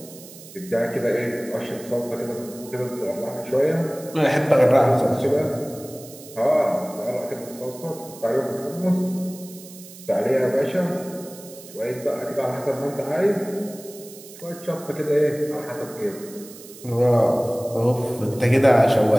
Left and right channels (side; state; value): right; noise; hiss, 18 dB below the sound